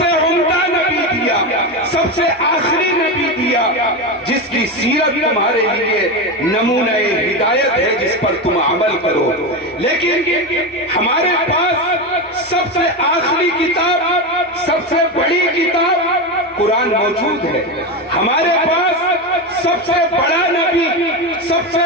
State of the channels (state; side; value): normal; both; correlation 0.16